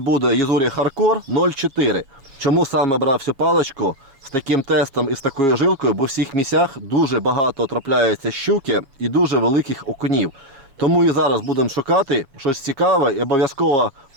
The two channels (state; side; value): late; left; 7.3 ms